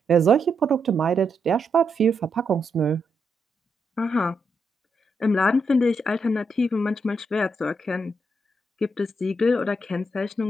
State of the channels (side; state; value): both; normal; correlation 0.81